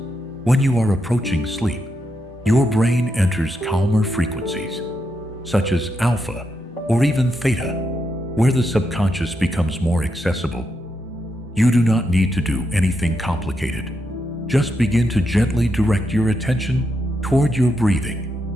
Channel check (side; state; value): both; normal; correlation 0.83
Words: when you are approaching sleep, your brain enters calmer frequencies, such as alpha or even theta, where the subconscious becomes more accessible. You do not need to do anything complicated. Just begin to gently direct your attention toward your